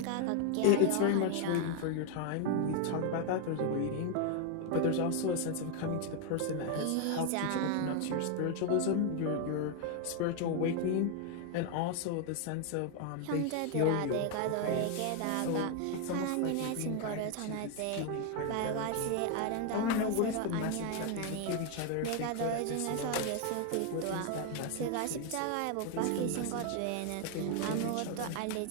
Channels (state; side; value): different; both; correlation 0.00